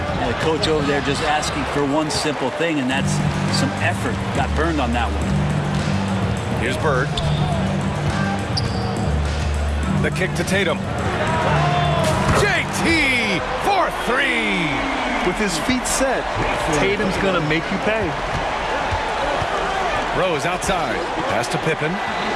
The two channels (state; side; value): identical; both; correlation 1.00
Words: the coach over there just asking for one simple thing, and that's some effort. Got burned on that one. Here's Bird. The kick to Tatum. JT for 3. With his feet set, Tatum's gonna make you pay. Rose outside. Pass to Pippen.